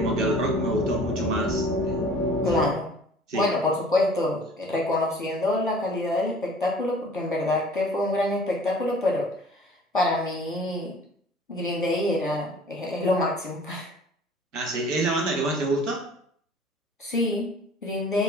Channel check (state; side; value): normal; both; correlation 0.50